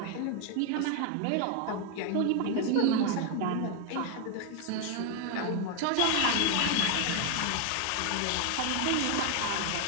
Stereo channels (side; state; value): both; different; correlation 0.01